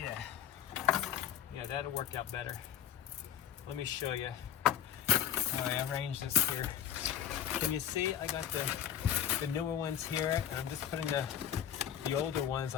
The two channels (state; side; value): quieter; right; 10.1 dB